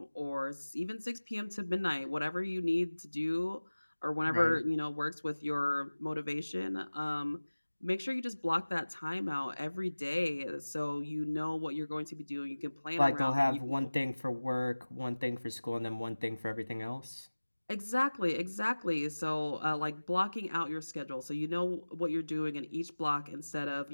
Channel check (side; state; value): both; inverted; correlation -1.00